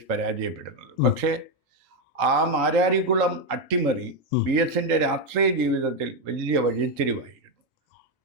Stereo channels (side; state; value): both; normal; correlation 0.05